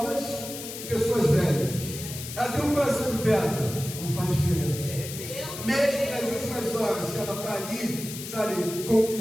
e pessoas velhas. Ela tem um coração de pedra, não faz diferença. Mesmo nas últimas horas que ela está ali, sabe, com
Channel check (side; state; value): left; noise; hiss, 9 dB below the sound